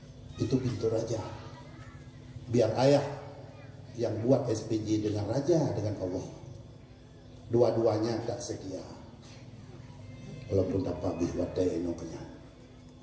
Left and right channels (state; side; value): identical; both; correlation 1.00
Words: itu pintu raja biar ayah yang buat SPJ dengan raja dengan Allah dua-duanya tak sedia walaupun dapat bihwadai enoknya